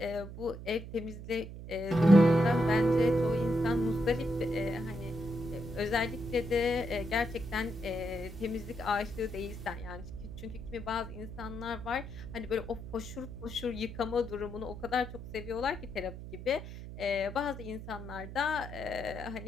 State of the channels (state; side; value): noise; right; hum, 11 dB below the sound